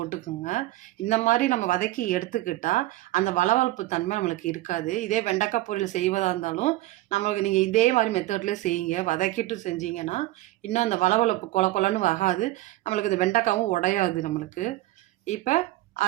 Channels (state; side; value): quieter; left; 17.0 dB